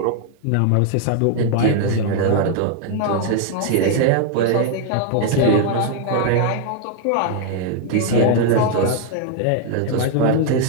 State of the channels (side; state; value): both; different; correlation 0.00